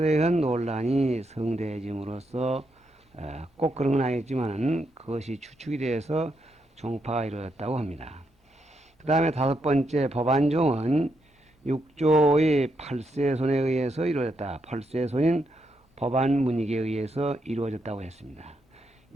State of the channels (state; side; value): normal; both; correlation 0.80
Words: 논란이 성대해짐으로써 꼭 그런 건 아니지만 그것이 추측이 돼서 종파가 이루어졌다고 합니다. 그 다음에 5번째 법안종은 6조의 8세손에 의해서 이루어졌다. 8세손인 법안문익에 의해서 이루어졌다고 했습니다.